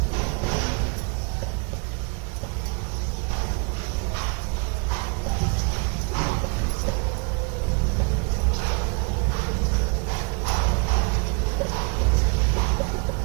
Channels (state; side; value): quieter; left; 34.3 dB